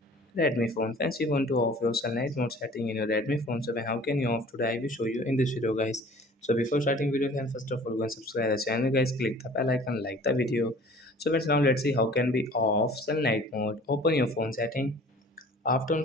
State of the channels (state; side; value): normal; both; correlation 0.48